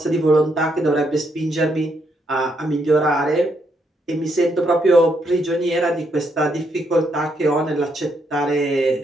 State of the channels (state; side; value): normal; both; correlation 0.76